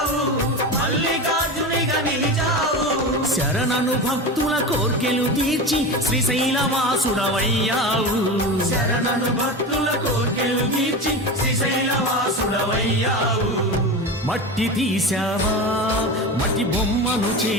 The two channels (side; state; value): both; normal; correlation 0.25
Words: మల్లికార్జునిగా నిలిచావు శరణను భక్తుల కోర్కెలు తీర్చి శ్రీశైలవాసుడవయ్యావు శరణను భక్తుల కోర్కెలు తీర్చి శ్రీశైలవాసుడవయ్యావు మట్టి తీసావా మట్టి బొమ్మను